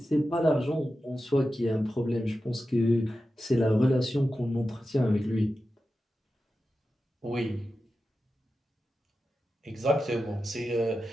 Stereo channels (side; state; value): both; normal; correlation 0.92